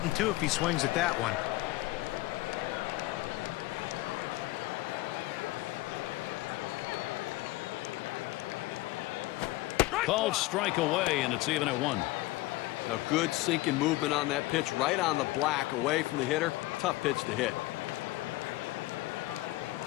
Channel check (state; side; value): quieter; right; 19.0 dB